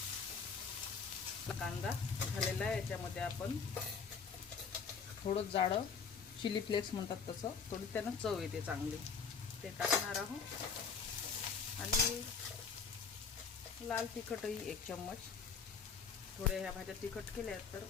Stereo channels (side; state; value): right; quieter; 5.8 dB